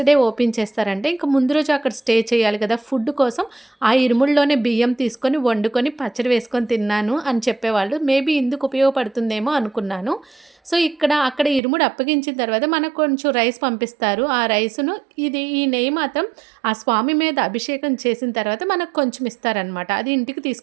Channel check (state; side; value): drops out; left; at 11.6 s